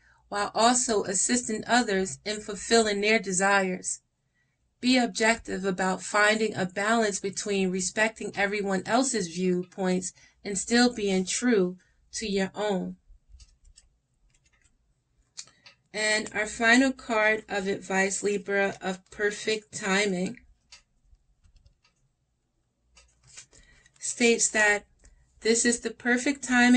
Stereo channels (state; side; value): identical; both; correlation 1.00